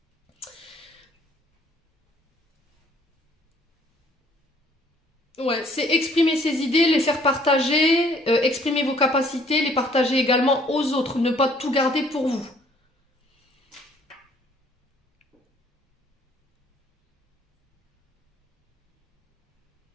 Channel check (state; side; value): normal; both; correlation 0.60